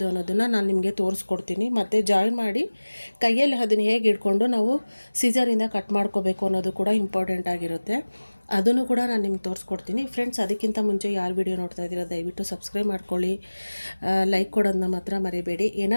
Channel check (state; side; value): inverted; both; correlation -1.00